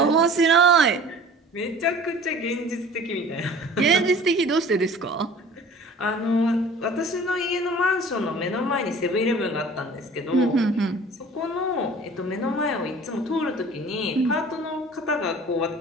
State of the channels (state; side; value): normal; both; correlation 0.45